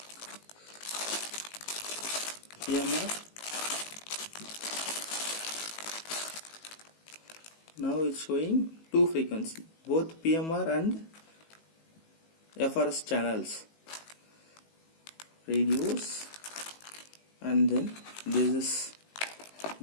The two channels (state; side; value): late; right; 19 ms